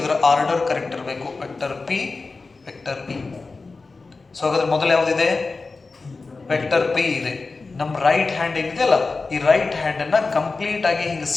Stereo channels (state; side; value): quieter; right; 3.9 dB